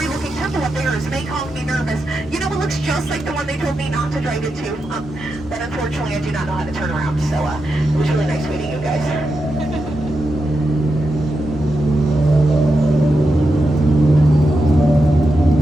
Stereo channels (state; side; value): normal; both; correlation 0.87